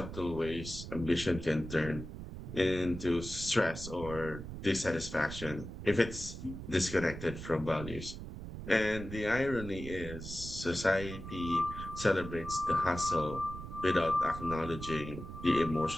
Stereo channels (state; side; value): noise; right; rumble, 9 dB below the sound